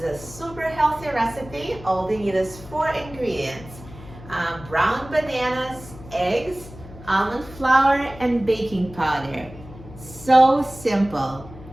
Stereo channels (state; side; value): noise; left; hum, 16 dB below the sound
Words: super healthy recipe. All we need is 4 ingredients. Brown bananas, eggs, almond flour, and baking powder. So simple.